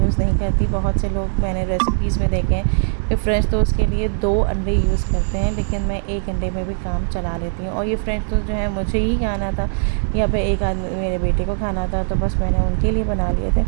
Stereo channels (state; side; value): silent; left; digital silence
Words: नहीं करती। बहुत से लोग मैंने रेसिपीज़ में देखे हैं कि फ्रेंच टोस्ट के लिए 2 अंडे यूज़ करते हैं, लेकिन मैं एक अंडे में भी काम चला लेती हूँ। और ये फ्रेंच टोस्ट जो है मुझे ही खाना था, या फिर एक आदमी मेरे बेटे को खाना था, तो बस मैंने उनके लिए बना लिए थे।